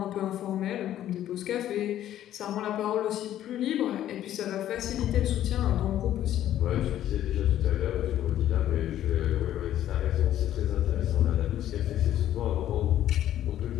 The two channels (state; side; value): quieter; right; 12.0 dB